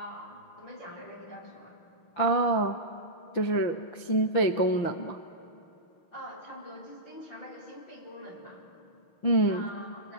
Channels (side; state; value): right; late; 5.9 ms